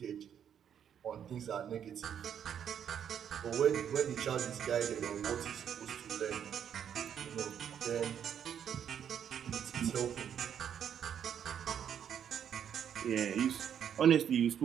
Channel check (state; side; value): quieter; left; 8.7 dB